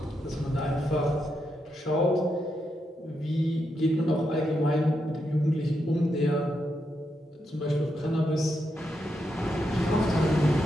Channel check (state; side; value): normal; both; correlation 0.83